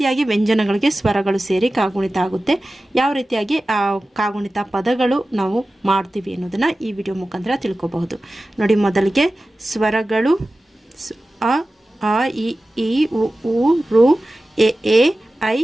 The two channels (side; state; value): both; normal; correlation 0.95